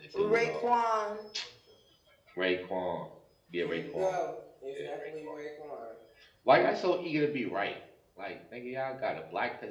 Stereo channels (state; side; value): identical; both; correlation 1.00